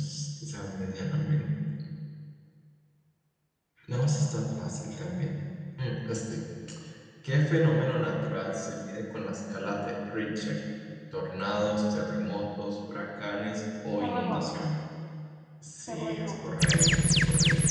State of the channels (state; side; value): identical; both; correlation 1.00